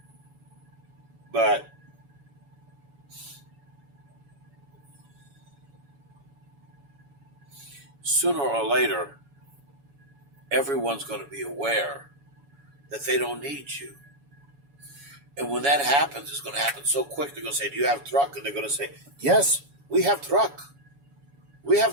But sooner or later, everyone's going to be aware that they don't need you. And when that happens, it's going to happen so quick. They're going to say, do you have truck? And they're going to say, yes, we have truck. We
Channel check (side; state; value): left; late; 7.1 ms